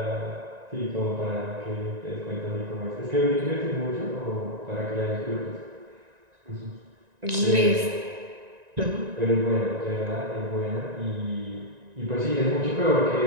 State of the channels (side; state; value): left; late; 1.9 ms